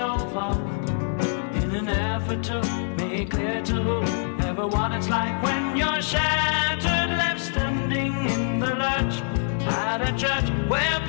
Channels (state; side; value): silent; right; 62 dB below the other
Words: up in an effort to make clear to whoever what it's like when you're shattered, left standing in the lurch at a church where